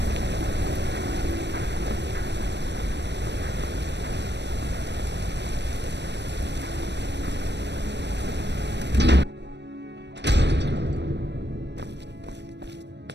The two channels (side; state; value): left; late; 0.50 ms